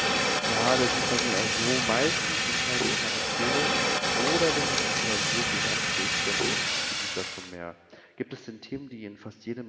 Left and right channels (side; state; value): both; identical; correlation 1.00